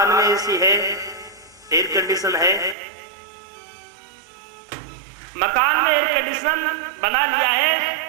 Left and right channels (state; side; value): drops out; left; at 2.8 s